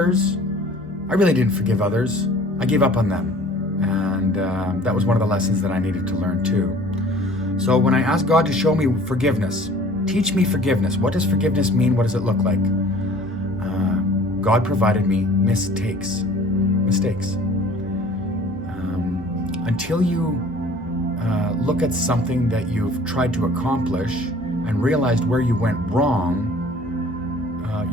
I really didn't forgive others. I gave up on them. And that was one of the lessons that I needed to learn too. So when I asked God to show me forgiveness, teach me forgiveness. What does forgiveness mean? What does it look like? God provided me mistakes. Until you look at something that you've tried to accomplish and realized where you went wrong,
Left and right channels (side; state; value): both; normal; correlation 0.49